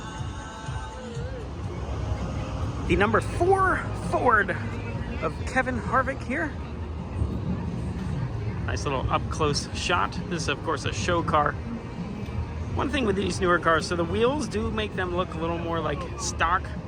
The number 4 Ford of Kevin Harvick here. Nice little up-close shot. This is, of course, a show car. One thing with these newer cars, so the wheels do make them look a little more like stock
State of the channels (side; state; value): both; identical; correlation 1.00